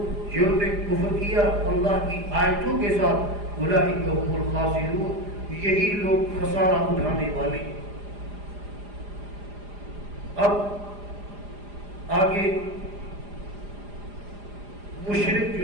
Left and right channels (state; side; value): late; left; 4.9 ms